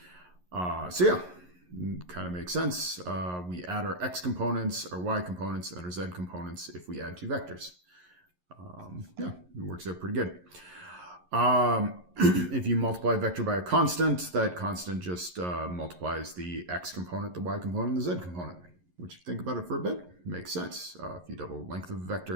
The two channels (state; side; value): late; left; 11 ms